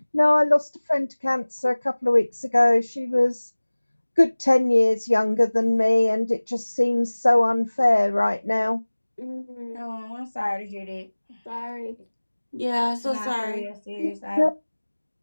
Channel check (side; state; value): both; inverted; correlation -1.00